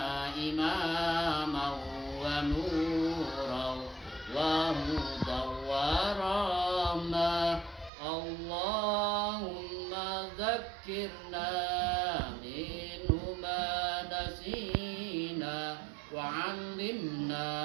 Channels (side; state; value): left; drops out; at 7.9 s